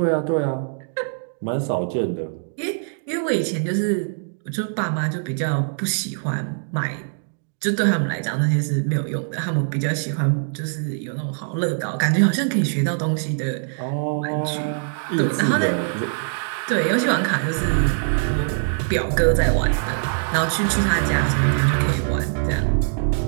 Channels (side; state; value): left; silent; digital silence